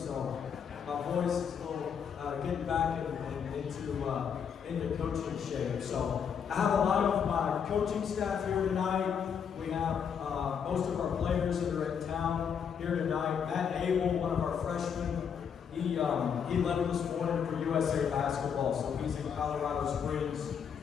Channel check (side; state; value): right; quieter; 7.3 dB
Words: my voice is a little getting back into coaching shape. So I have a lot of my coaching staff here tonight. We have most of our players that are in town here tonight. Matt Abel, one of our freshmen, he left this morning for USA Basketball, so he's in Colorado Springs